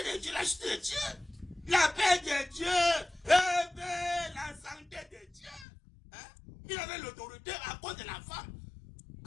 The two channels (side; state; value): right; drops out; at 5.7 s